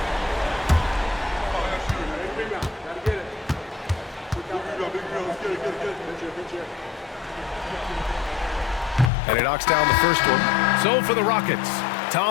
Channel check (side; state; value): right; drops out; at 9.1 s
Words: And he knocks down the first one. So for the Rockets,